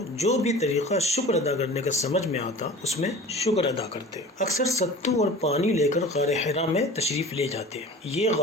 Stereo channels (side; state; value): both; normal; correlation 0.39